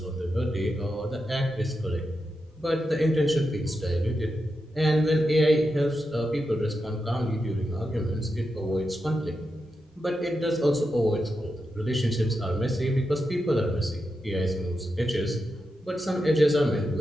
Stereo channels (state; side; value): normal; both; correlation 0.88